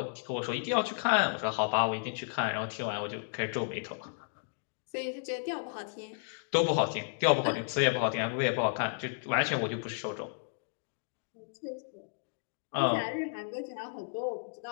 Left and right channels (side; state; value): right; silent; digital silence